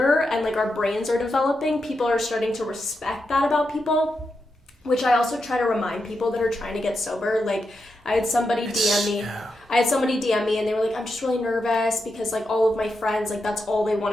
and like our brains are developing, people are starting to respect that about people, which I also try to remind people that are trying to get sober. Like I had somebody DM me and they were like, I'm just really nervous because like all of my friends, like that's all they want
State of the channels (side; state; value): both; normal; correlation 0.86